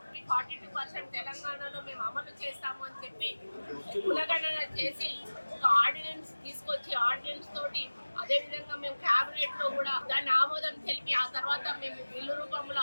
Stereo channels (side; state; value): both; inverted; correlation -1.00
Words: 42% తెలంగాణలో మేము అమలు చేస్తాము అని చెప్పి కులగణన చేసి ఒక ఆర్డినెన్స్ తీసుకొచ్చి ఆర్డినెన్స్ తోటి అదే విధంగా మేము కేబినెట్ లో కూడా దాన్ని ఆమోదం తెలిపి ఆ తర్వాత మేము బిల్లు రూపంలో